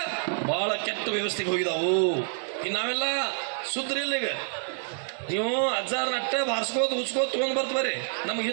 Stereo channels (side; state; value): left; silent; digital silence